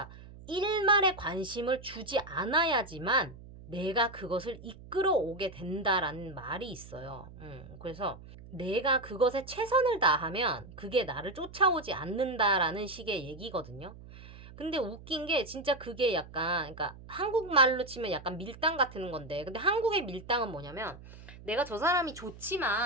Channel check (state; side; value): noise; right; hum, 17 dB below the sound